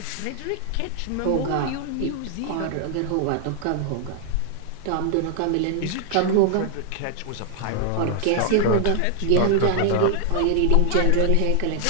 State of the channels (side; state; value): both; different; correlation 0.00